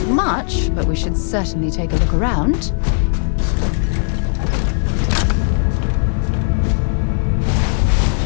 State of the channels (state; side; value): silent; right; digital silence